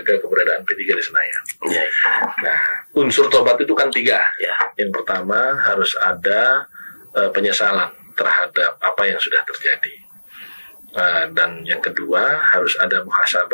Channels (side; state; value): both; inverted; correlation -1.00